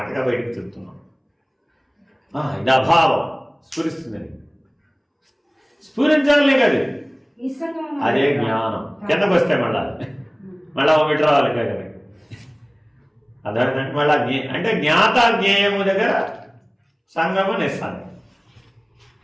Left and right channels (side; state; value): both; identical; correlation 1.00